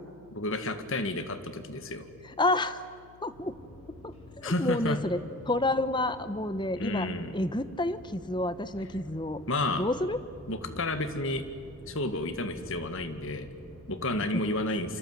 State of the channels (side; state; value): left; noise; hum, 25 dB below the sound